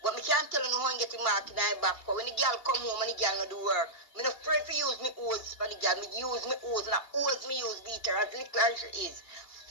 But me can't tell you how I get the mark in my back. Because when the girl come home and the girl no do work, me not afraid to use me hose for the girl. Me use me hose and I hose me use beater as little as she is.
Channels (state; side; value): late; right; 2.8 ms